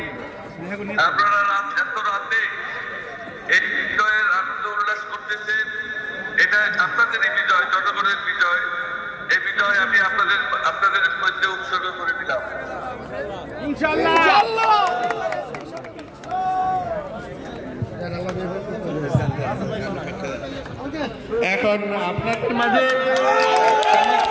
আপনারা এত রাতে এই বিজয়ের আনন্দ উল্লাস করতেছেন, এটা আপনাদেরই বিজয়, জনগণের বিজয়। এই বিজয় আমি আপনাদের মধ্যে উৎসর্গ করে দিলাম। এখন আপনাদের মাঝে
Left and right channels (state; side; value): identical; both; correlation 1.00